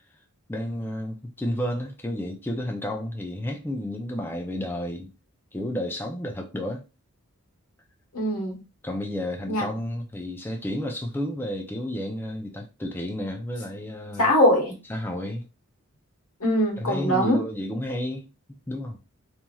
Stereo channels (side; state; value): both; normal; correlation 0.39